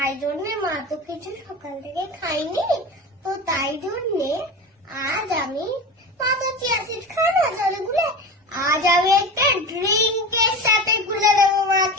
জন্য মা তো কিছু সকাল থেকে খাইনি, তো তাই জন্য আজ আমি মা তো চিয়া সিড খায় না জলে গুলে, আজ আমি একটা ড্রিঙ্কের সাথে গুলে দেবো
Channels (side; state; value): both; normal; correlation 0.28